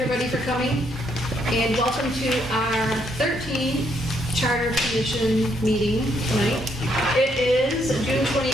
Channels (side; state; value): both; normal; correlation 0.73